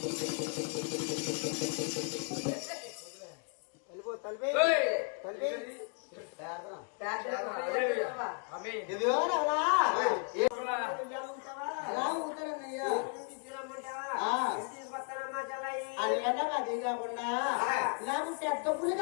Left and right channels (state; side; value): quieter; right; 38.1 dB